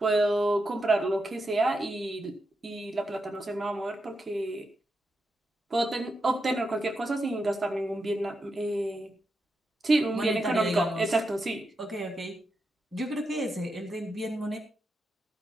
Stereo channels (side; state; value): both; normal; correlation 0.86